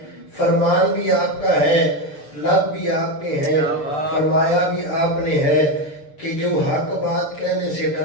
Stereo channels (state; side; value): late; right; 6.8 ms